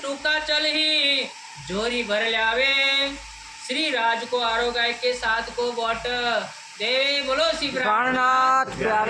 टूका चल ही, जोरी भर लावे, श्री राज को आरोगाय के साथ को बोट दे। बोलो श्री प्राणनाथ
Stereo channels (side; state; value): both; identical; correlation 1.00